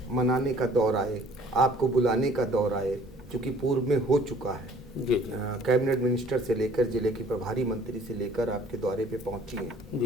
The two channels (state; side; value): normal; both; correlation 0.55